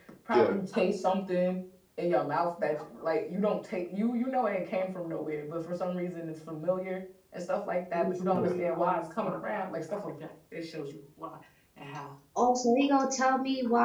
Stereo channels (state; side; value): identical; both; correlation 1.00